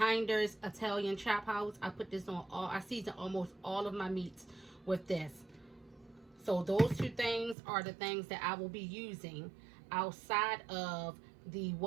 Italian Chop House. I put this on I season almost all of my meats with this. So those two things are the things that I will be using outside of the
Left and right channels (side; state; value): left; drops out; at 7.6 s